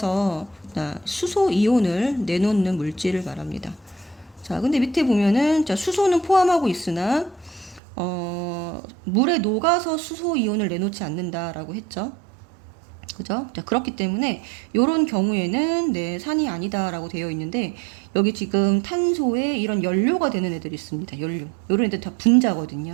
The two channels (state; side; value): drops out; left; at 7.8 s